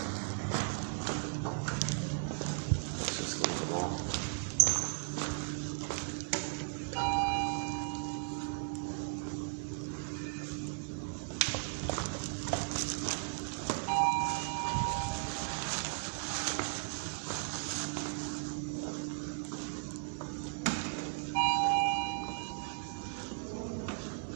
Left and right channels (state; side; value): quieter; left; 37.4 dB